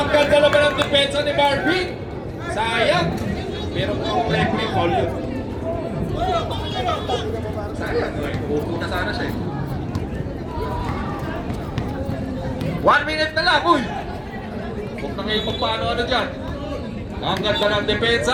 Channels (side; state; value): both; identical; correlation 1.00